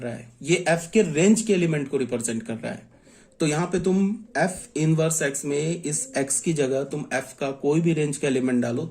है, ये एफ के रेंज के एलिमेंट को रिप्रेजेंट कर रहा है। तो यहां पे तुम एफ इनवर्स एक्स में इस एक्स की जगह तुम एफ का कोई भी रेंज का एलिमेंट डालो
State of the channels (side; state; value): both; identical; correlation 1.00